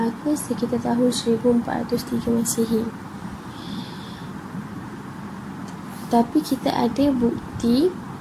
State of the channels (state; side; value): identical; both; correlation 1.00